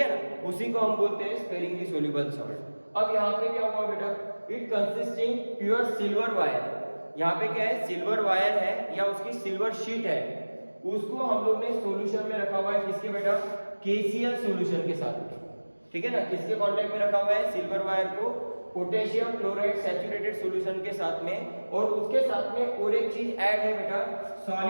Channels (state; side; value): inverted; both; correlation -1.00